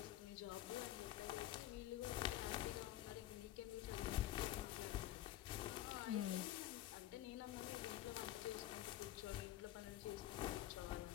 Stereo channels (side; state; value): right; quieter; 13.7 dB